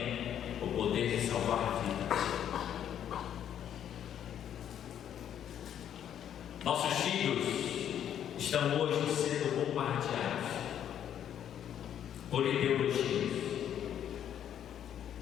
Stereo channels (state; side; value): quieter; right; 9.8 dB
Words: o poder de salvar vidas. Nossos filhos estão hoje sendo bombardeados por ideologias.